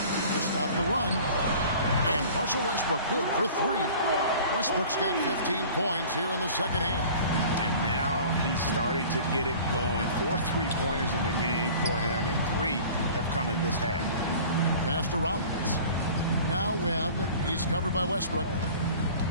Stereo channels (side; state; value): both; inverted; correlation -0.44